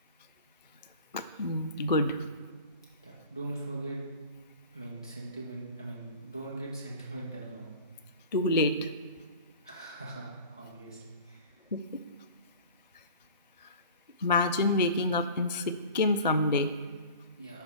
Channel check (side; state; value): both; inverted; correlation -0.40